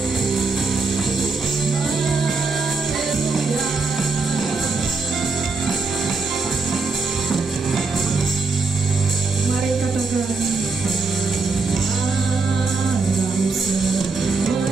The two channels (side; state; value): left; quieter; 4.2 dB